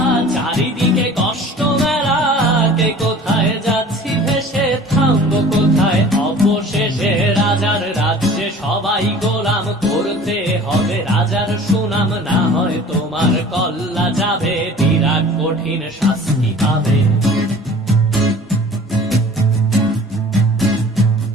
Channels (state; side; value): normal; both; correlation 0.45